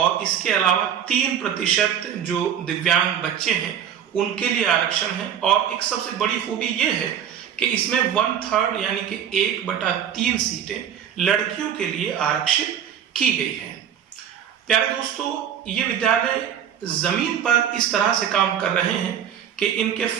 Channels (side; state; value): left; quieter; 9.1 dB